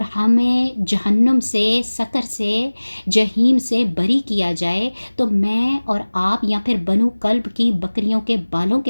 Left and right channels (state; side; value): inverted; both; correlation -1.00